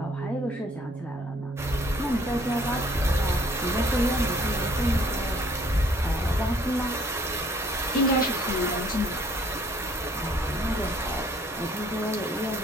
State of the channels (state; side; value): normal; both; correlation 0.59